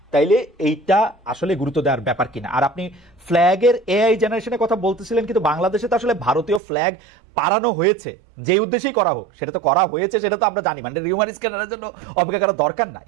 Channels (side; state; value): left; drops out; at 6.6 s